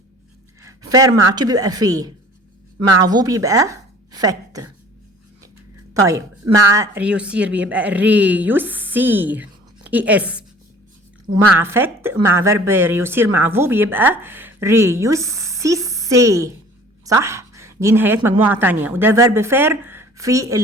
فير مع تو بيبقى في، مع فو بيبقى فت. طيب مع ريوسير بيبقى ريوسير اي اس، ومع فت مع فيرب ريوسير مع فو بيبقى ريوسيسي. صح؟ دي نهايات مجموعة تانية، وده فيرب فير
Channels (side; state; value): both; normal; correlation 0.49